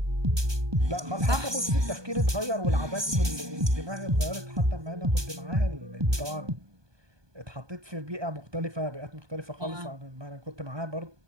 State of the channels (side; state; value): left; late; 1.2 ms